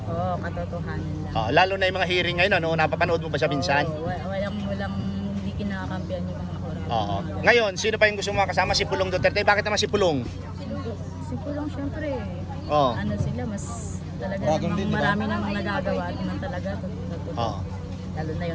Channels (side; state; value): both; identical; correlation 1.00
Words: Oo, katotohanan lang. Lalo na yung mga hearing ngayon, napapanood mo ba siya minsan? Oo, walang hindi kinakampihan yung mga oras. Oo. Ngayon, sino pa yung gusto mo makasama? Si Pulong Duterte. Bakit naman si Pulong? Si Pulong syempre, Oo. ano sila, mas talaga Dragon namang din, di ba? marami namang nagagawa at naman talaga. Oo. Lalo na